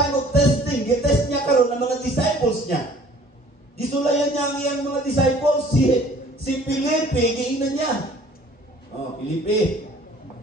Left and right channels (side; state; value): both; normal; correlation 0.53